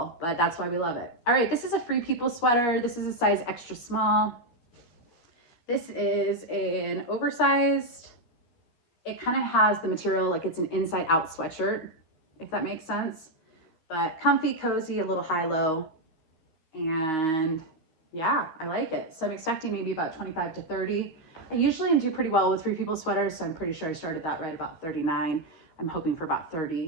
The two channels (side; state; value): right; late; 12 ms